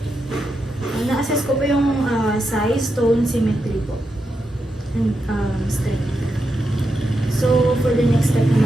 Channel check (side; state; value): both; normal; correlation 0.86